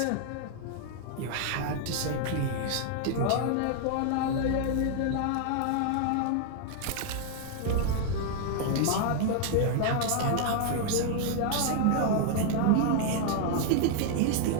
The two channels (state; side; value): different; both; correlation 0.00